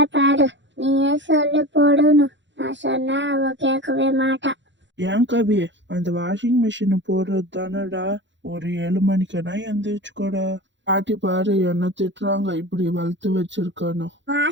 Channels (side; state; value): left; late; 0.53 ms